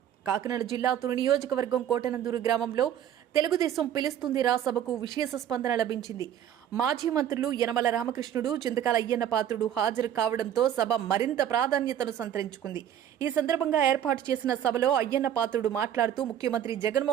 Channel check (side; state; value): left; quieter; 10.2 dB